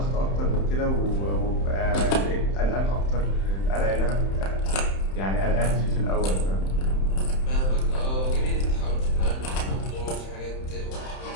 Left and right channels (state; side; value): late; right; 31 ms